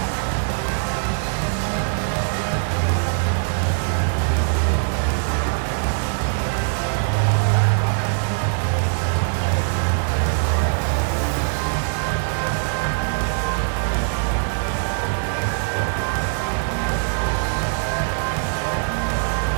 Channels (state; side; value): silent; left; 64 dB below the other